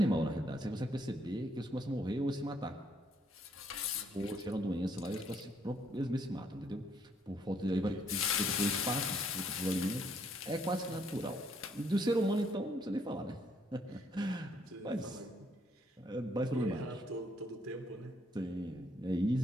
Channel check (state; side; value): normal; both; correlation 0.70